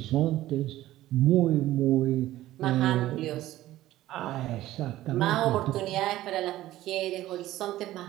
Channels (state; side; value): quieter; left; 15.1 dB